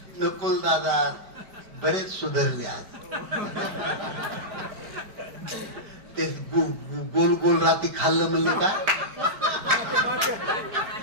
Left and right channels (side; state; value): left; late; 5.0 ms